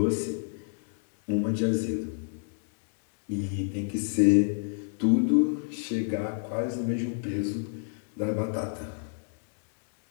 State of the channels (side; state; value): right; silent; digital silence